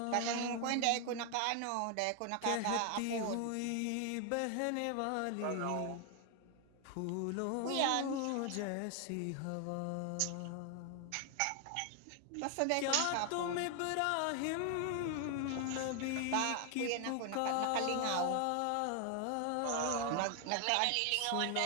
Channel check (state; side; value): different; both; correlation 0.00